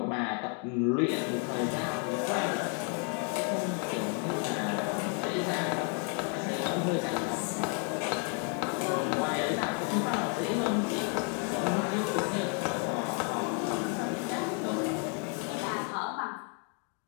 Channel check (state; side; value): quieter; right; 34.8 dB